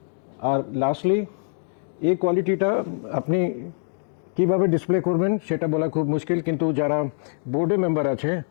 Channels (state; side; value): silent; right; digital silence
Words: আর লাস্টলি এই কোয়ালিটিটা আপনি কীভাবে ডিসপ্লে করবেন সেটা বলা খুব মুশকিল, কিন্তু যারা বোর্ডে মেম্বার আছে